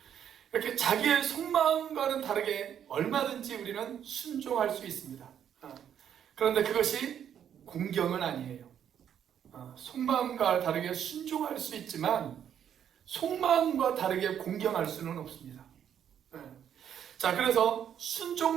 이렇게 자기의 속마음과는 다르게 얼마든지 우리는 순종할 수 있습니다. 그런데 그것이 공경은 아니에요. 속마음과 다르게 순종할 수 있지만 속마음과 다르게 공경할 수는 없습니다. 자, 그래서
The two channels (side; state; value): left; quieter; 9.2 dB